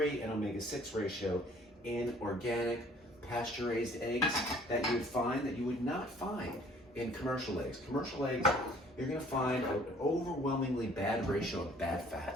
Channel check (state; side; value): normal; both; correlation 0.56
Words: and omega-6 ratio in organic, pasture-raised eggs that you would not find in commercial eggs. Commercial eggs, you're going to find an overwhelmingly bad ratio of bad